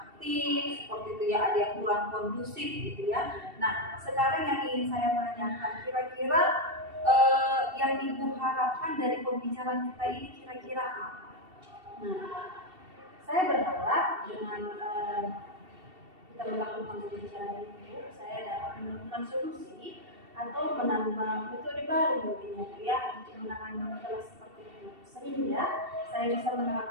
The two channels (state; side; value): late; left; 2.7 ms